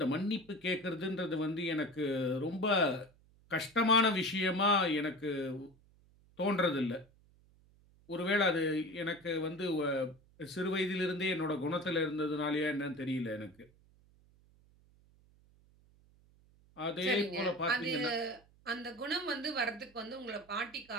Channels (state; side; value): noise; right; hum, 29 dB below the sound